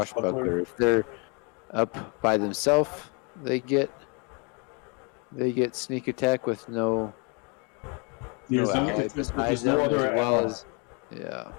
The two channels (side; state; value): right; quieter; 34.0 dB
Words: If they're up by themselves, they get sneak attack with no ally beside them, as well as